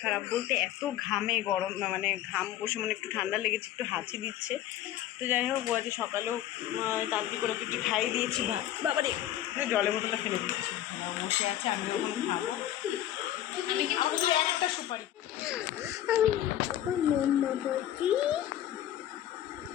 খারাপ বলতে এত ঘামে, গরম মানে ঘাম বসে, মানে একটু ঠান্ডা লেগেছে, একটু হাঁচি দিচ্ছে। তো যাই হোক, ও আজকে সকালেও তাড়াতাড়ি করে একটু খাইয়ে দিয়েছি ভাত। বাবারে জলের বোতলটা ফেলে দিচ্ছি, বসে আছে, আমি ওখানে খাবো। আমি কিন্তু একটা সুপারি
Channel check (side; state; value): right; quieter; 12.4 dB